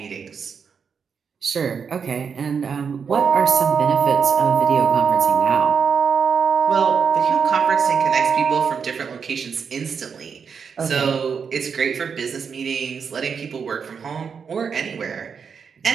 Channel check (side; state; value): left; quieter; 6.3 dB